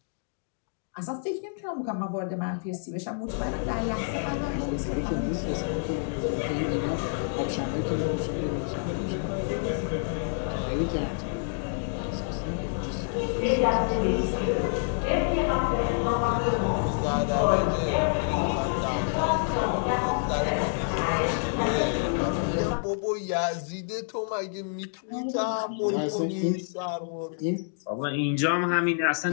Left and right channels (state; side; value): silent; right; digital silence